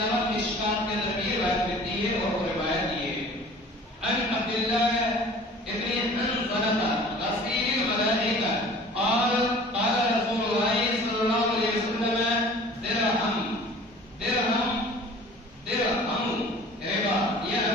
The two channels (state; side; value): normal; both; correlation 0.46